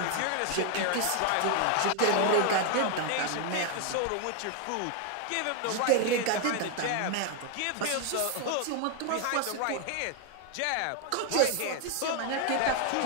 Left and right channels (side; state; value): both; different; correlation 0.01